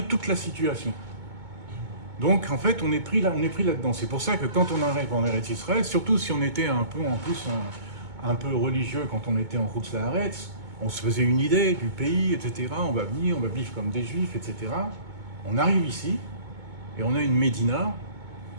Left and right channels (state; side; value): late; left; 2.2 ms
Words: toute la situation. Donc en fait on est pris là-dedans. C'est pour ça que quand on arrive en Eretz Israël, surtout si on était un peu religieux quand on était en Chutz La'aretz, on se faisait une idée du pays, etc. On va venir, on va vivre comme des juifs, etc. On arrive ici et on a une Médina